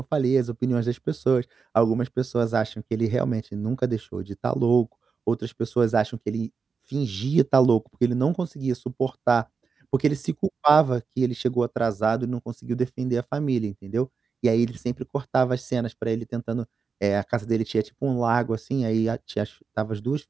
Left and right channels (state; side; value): quieter; left; 5.3 dB